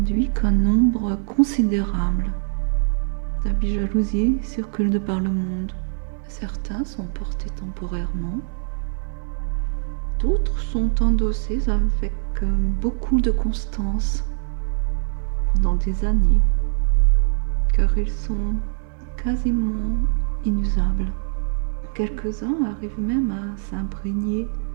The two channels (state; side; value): silent; left; 63 dB below the other